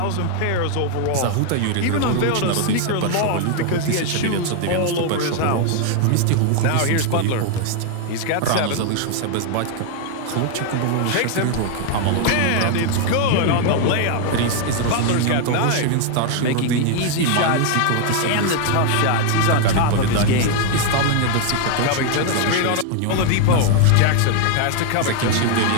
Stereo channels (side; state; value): both; different; correlation 0.00